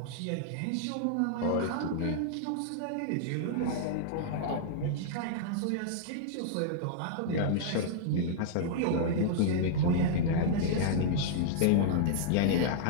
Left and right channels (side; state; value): both; different; correlation -0.01